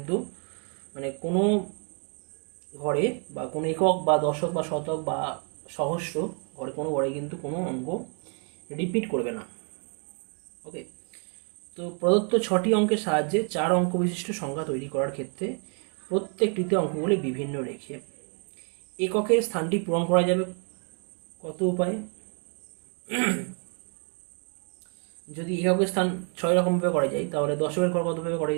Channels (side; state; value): left; quieter; 38.6 dB